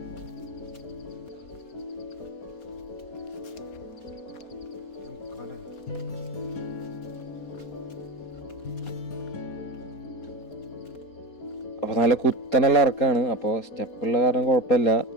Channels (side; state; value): right; late; 4.2 ms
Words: അപ്പോൾ നല്ല കുത്തനുള്ള ഇറക്കാണ്. അപ്പോൾ സ്റ്റെപ്പുള്ള കാരണം കുഴപ്പമില്ല,